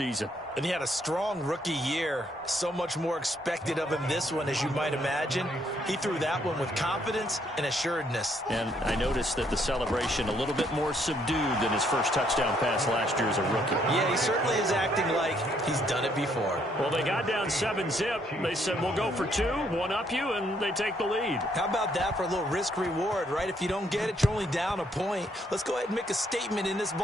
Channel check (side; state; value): both; normal; correlation 0.70